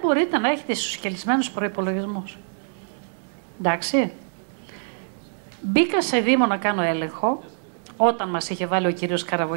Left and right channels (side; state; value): left; silent; digital silence